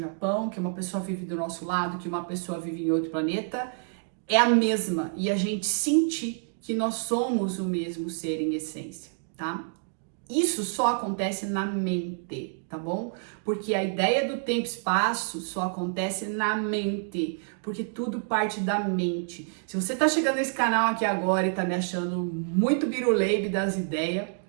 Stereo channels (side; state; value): left; silent; digital silence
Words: que uma pessoa vive do nosso lado, que uma pessoa vive em outro planeta, é a mesma. E a gente sentir que nós somos o mesmo ser em essência, tá? Isso só acontece na mente, tá bom? Porque a ideia do tempo e espaço só acontece na mente, porque tudo parte da mente. Se você tá chegando nesse canal aqui agora e tá me achando muito biruleibe das ideias,